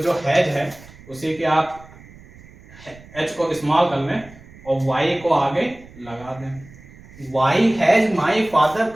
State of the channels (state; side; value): noise; right; rumble, 21 dB below the sound